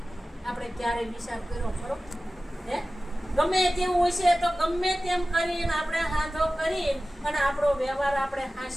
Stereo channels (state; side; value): normal; both; correlation 0.96